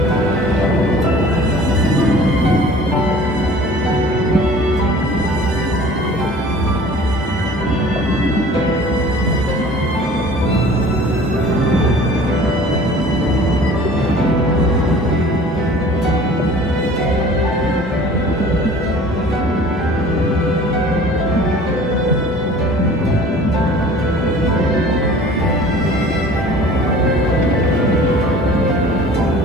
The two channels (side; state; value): both; normal; correlation 0.46